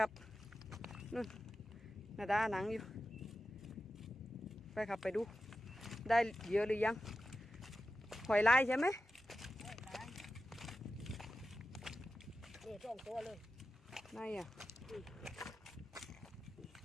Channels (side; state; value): both; normal; correlation 0.93